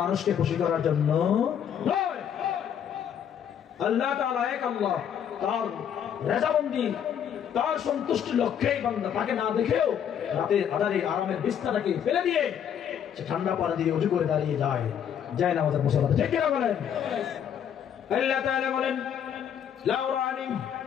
মানুষকে খুশি করার জন্য নয়, আল্লাহ তাআলা এক আল্লাহ, তার রেজামন্দি, তার সন্তুষ্টির লক্ষ্যেই বান্দা তাকে না দেখেও রাতে আধারে আরামের বিছানাটাকে ফেলে দিয়ে সে ঠান্ডা পানি দিয়ে ওযু করে দাঁড়িয়ে যায়, যায় নামাজের মুসল্লাতে, ঠিক কিনা বলেন? আল্লাহ তাআলা বলেন লাউ রানি,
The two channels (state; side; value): quieter; right; 8.8 dB